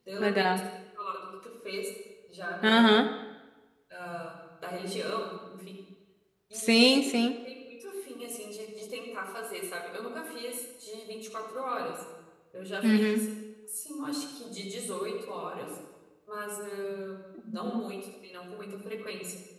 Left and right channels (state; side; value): identical; both; correlation 1.00